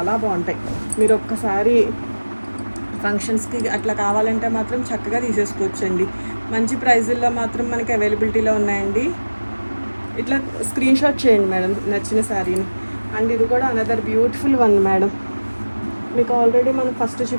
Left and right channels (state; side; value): inverted; both; correlation -1.00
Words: బాగుంటాయి. మీరు ఒక్కసారి ఫంక్షన్స్కి అట్లా కావాలంటే మాత్రం చక్కగా తీసేసుకోవచ్చండి. మంచి ప్రైజుల్లో మాత్రం మనకి అవైలబిలిటీలో ఉన్నాయండి. ఇట్లా స్క్రీన్ షాట్ చేయండి మేడం నచ్చిన శారీని. అండ్ ఇది కూడా అనదర్ బ్యూటిఫుల్ వన్ మేడం. మీకు ఆల్రెడీ మనం ఫస్ట్